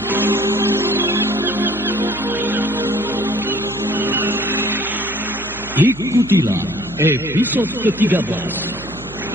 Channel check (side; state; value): right; noise; hum, 17 dB below the sound